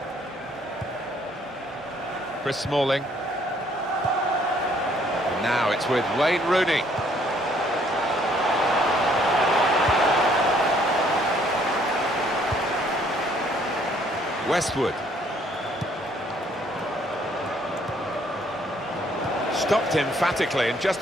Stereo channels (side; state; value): both; normal; correlation 0.64